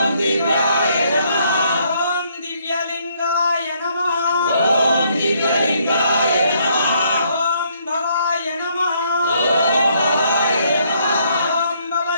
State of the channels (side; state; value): both; inverted; correlation -0.69